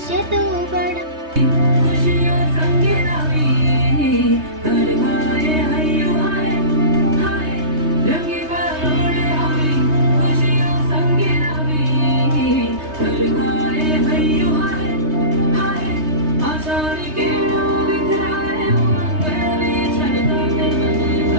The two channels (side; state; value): left; late; 3.2 ms